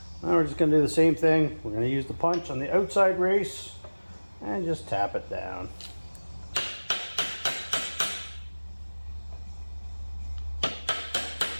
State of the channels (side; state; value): both; inverted; correlation -1.00